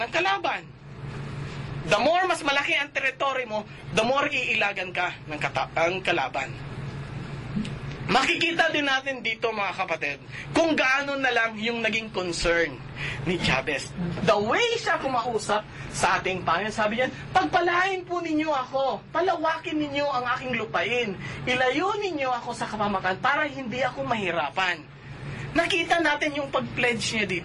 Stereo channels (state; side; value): identical; both; correlation 1.00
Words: ng kalaban. The more mas malaki ang teritoryo mo, the more iilagan ka ng kalaban. Makikita din natin dito, mga kapatid, kung gaano na lang yung naging concern ni Jabez. The way siya kumausap sa ating Panginoon, sabi niya, pagpalain po ninyo ako, palawakin ninyo ang aking lupain, ilayo ninyo ako sa kapahamakan para hindi ako mahirapan. Nakita natin yung pag-pledge niya